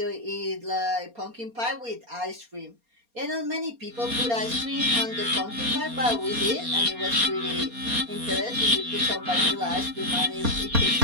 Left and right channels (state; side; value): late; left; 4.3 ms